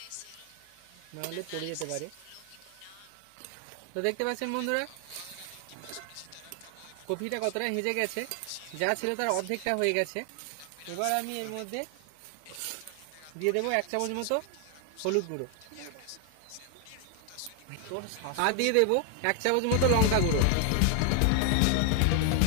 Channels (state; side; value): different; both; correlation 0.00